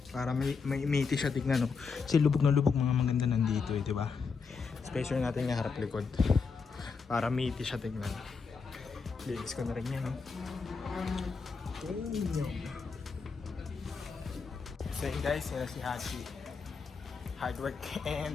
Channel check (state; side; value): quieter; right; 5.1 dB